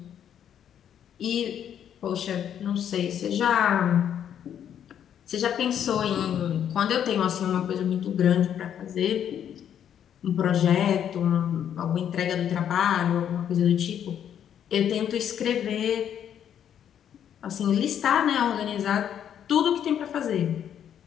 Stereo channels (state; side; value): quieter; right; 9.4 dB